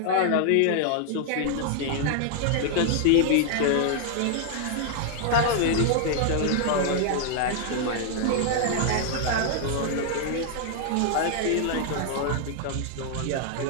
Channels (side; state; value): both; different; correlation -0.01